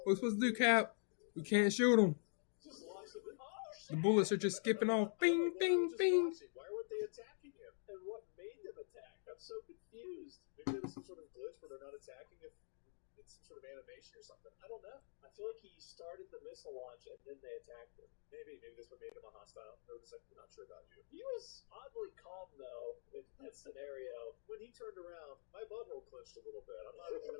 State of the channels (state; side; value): silent; right; digital silence